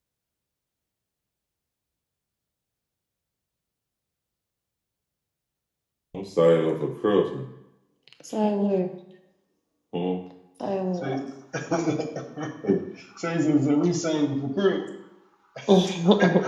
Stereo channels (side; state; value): both; identical; correlation 1.00